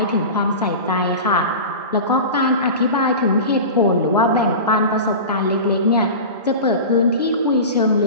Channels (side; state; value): both; inverted; correlation -0.30